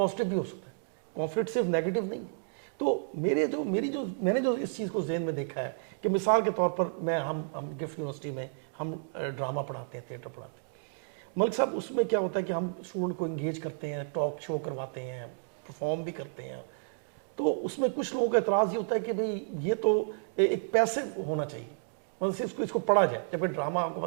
भी हो सकता है, कॉन्फ्लिक्ट सिर्फ नेगेटिव नहीं है। तो मैंने जो इस चीज़ को ज़हन में देखा है कि मिसाल के तौर पर हम गिफ्ट यूनिवर्सिटी में हम ड्रामा पढ़ाते हैं, थिएटर पढ़ाते हैं। मलिक साहब, उसमें क्या होता है कि हम स्टूडेंट को इंगेज करते हैं, टॉक शो करवाते हैं, परफॉर्म भी करते हैं। तो उसमें कुछ लोगों का एतराज़ ये होता है कि भाई ये तो एक पैसिव होना चाहिए, मतलब सिर्फ इसको पढ़ा जाए, जबकि ड्रामा आपको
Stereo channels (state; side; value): silent; left; digital silence